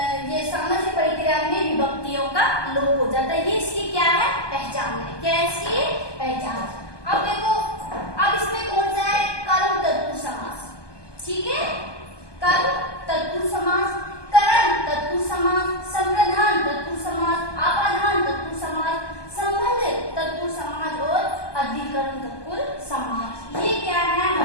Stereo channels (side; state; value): right; late; 1.2 ms